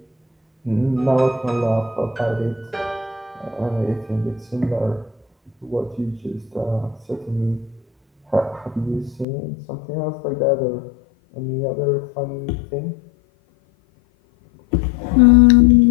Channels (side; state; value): right; drops out; at 9.2 s